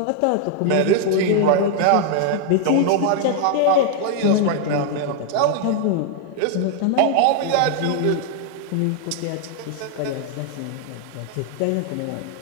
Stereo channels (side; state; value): both; different; correlation 0.00